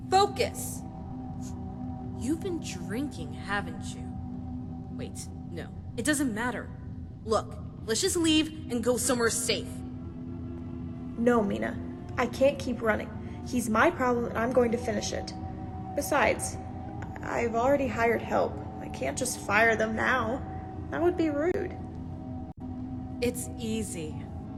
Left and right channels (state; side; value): identical; both; correlation 1.00